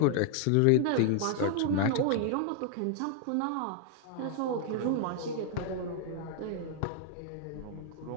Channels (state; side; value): different; both; correlation 0.00